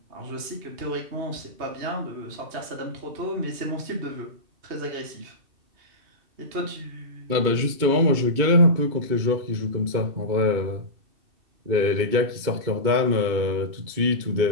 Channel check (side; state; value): left; late; 2.2 ms